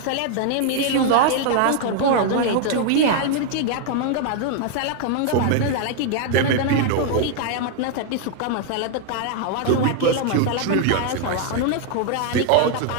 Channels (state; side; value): different; both; correlation 0.00